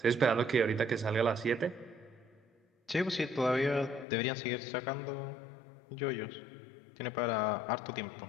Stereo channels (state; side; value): drops out; right; at 4.0 s